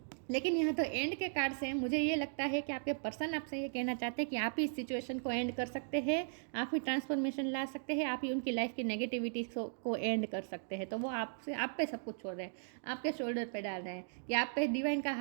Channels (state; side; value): silent; left; digital silence